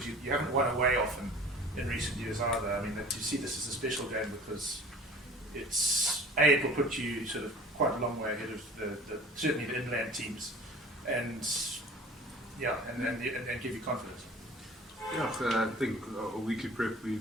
you haven't won away often in recent years either? I mean, do you see this as a special game because it will put you sort of quite a long way ahead of certainly the inland teams, and give you confidence? Yeah, I think a weekly prep,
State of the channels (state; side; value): normal; both; correlation 0.44